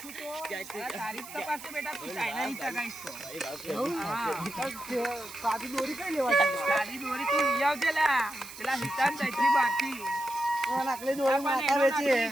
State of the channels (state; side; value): noise; right; hiss, 14 dB below the sound